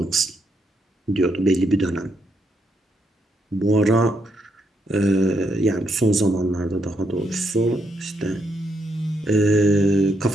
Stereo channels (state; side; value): normal; both; correlation 0.77